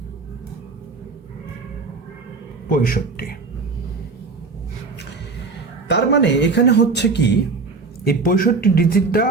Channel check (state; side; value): quieter; left; 4.2 dB